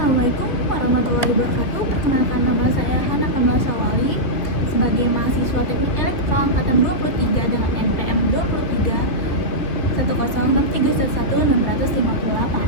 warahmatullahi wabarakatuh. Perkenalkan, nama saya Hana Kamila Syawali sebagai mahasiswa Teknik Elektro angkatan 23 dengan NPM 23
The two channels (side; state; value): right; late; 2.4 ms